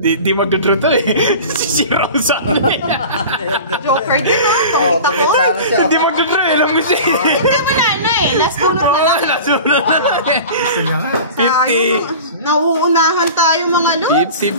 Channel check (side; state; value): both; inverted; correlation -0.36